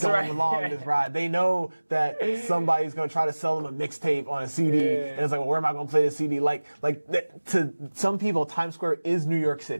ride. They know that somebody's going to try to sell them a mixtape on a CD, and it's like, well, where am I going to play this CD? To some people, Times Square is New York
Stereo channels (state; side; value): inverted; both; correlation -1.00